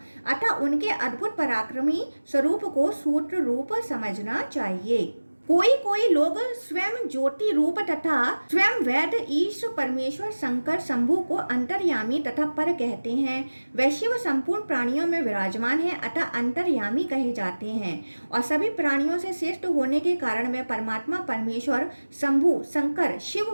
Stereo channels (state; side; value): inverted; both; correlation -1.00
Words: अतः उनके अद्भुत पराक्रमी स्वरूप को सूत्र रूप समझना चाहिए। कोई लोग स्वयं ज्योति रूप तथा स्वयं वेद ईश परमेश्वर शंकर शंभु को अंतर्यामी तथा पर कहते हैं। वह शिव संपूर्ण प्राणियों में विराजमान है, अतः अंतर्यामी कहे जाते हैं और सभी प्राणियों से श्रेष्ठ होने के कारण वे परमात्मा परमेश्वर शंभु शंकर शिव